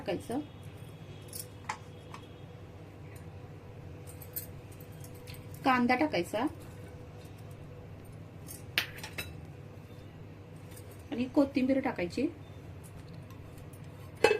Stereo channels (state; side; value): identical; both; correlation 1.00